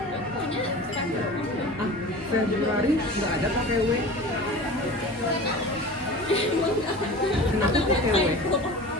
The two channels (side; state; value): both; normal; correlation 0.36